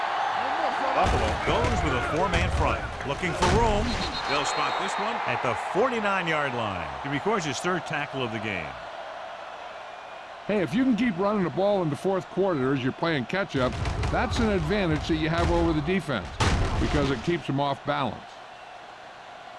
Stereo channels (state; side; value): identical; both; correlation 1.00